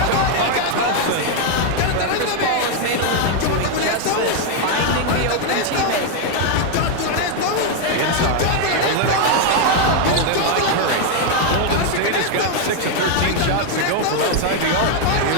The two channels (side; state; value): both; different; correlation 0.01